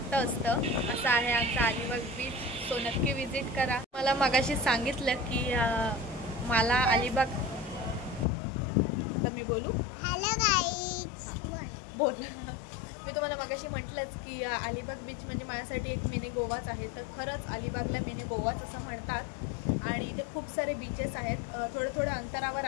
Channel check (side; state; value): right; drops out; at 8.2 s